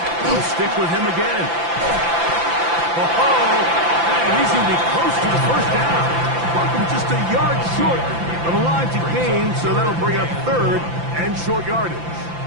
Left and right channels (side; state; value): left; late; 5.9 ms